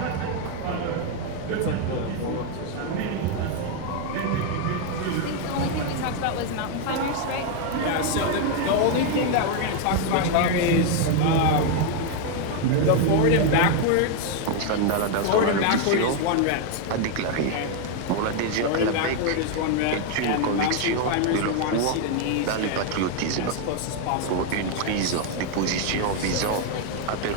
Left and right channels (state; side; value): different; both; correlation 0.01